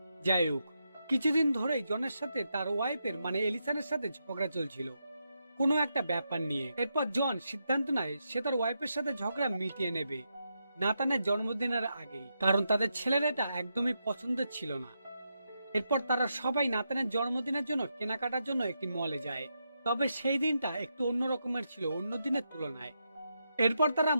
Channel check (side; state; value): both; inverted; correlation -0.84